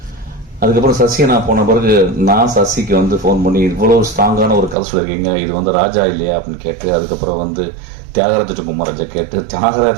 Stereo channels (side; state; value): left; drops out; at 4.8 s